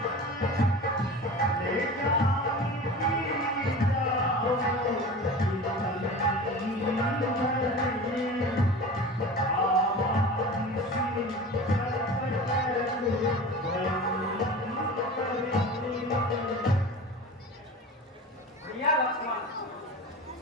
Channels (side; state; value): both; normal; correlation 0.34